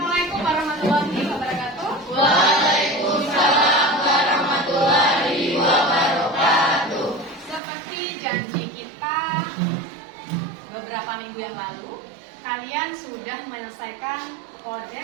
Assalamualaikum warahmatullahi wabarakatuh. Waalaikumsalam warahmatullahi wabarakatuh. Seperti janji kita beberapa minggu yang lalu, kalian sudah menyelesaikan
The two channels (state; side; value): drops out; left; at 7.6 s